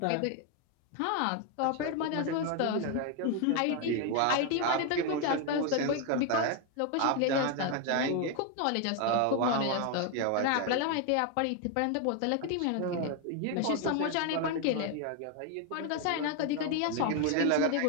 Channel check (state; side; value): different; both; correlation 0.01